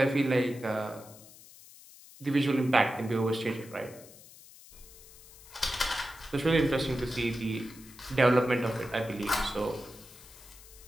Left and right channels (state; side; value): noise; left; hiss, 20 dB below the sound